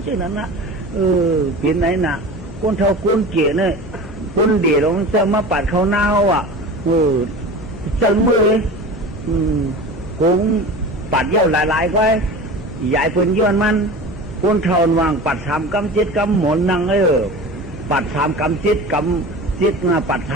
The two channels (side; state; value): left; noise; hum, 17 dB below the sound